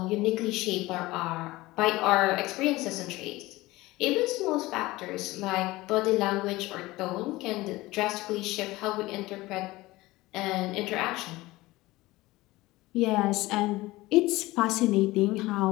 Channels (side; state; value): right; quieter; 19.4 dB